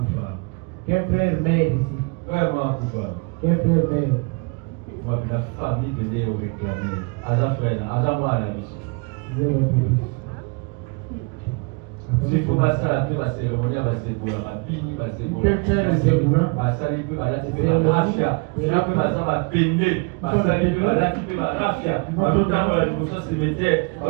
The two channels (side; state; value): left; quieter; 29.8 dB